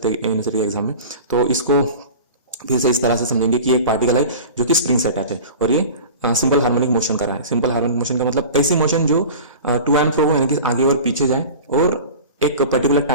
हैं यूनिवर्सिटी एग्जाम में। तो इसको फिर से इस तरह से समझेंगे कि एक पार्टिकल है जो कि स्प्रिंग से अटैच है और ये सिंपल हार्मोनिक मोशन कर रहा है। सिंपल हार्मोनिक मोशन का मतलब ऐसी मोशन जो टू एंड फ्रो हो, यानी कि आगे और पीछे जाए और एक पर्टिकुलर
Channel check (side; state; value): both; inverted; correlation -0.36